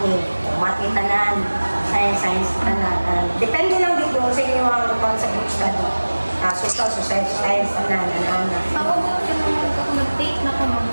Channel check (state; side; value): inverted; both; correlation -1.00